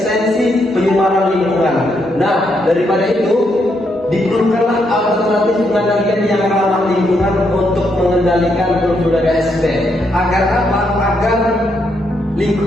penyumaran lingkungan. Nah, daripada itu diperlukanlah alternatif pengendalian yang ramah lingkungan untuk mengendalikan Pulveria sp. Agar apa? Agar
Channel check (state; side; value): normal; both; correlation 0.78